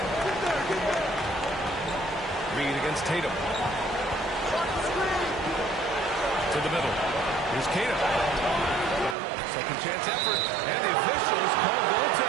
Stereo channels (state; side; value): drops out; left; at 9.2 s